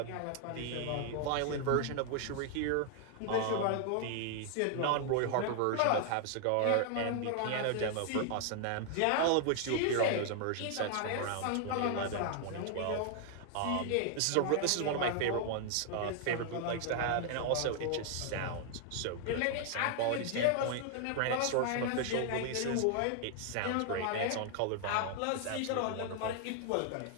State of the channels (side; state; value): both; different; correlation 0.00